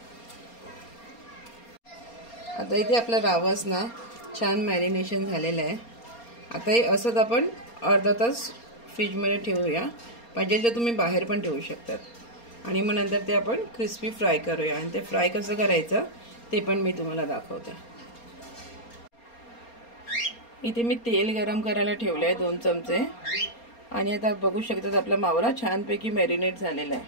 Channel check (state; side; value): late; right; 4.3 ms